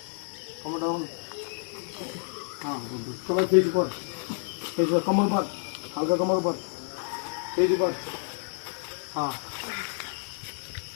हाँ सबाई फेस ऊपर कमर ऊपर हल्का कमर ऊपर फेस ऊपर हाँ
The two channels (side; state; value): right; silent; 58 dB below the other